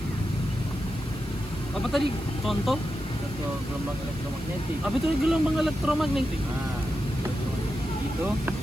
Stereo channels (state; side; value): noise; right; hiss, 22 dB below the sound